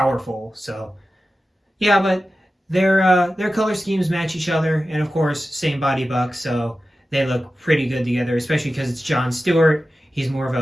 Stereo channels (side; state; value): both; normal; correlation 0.94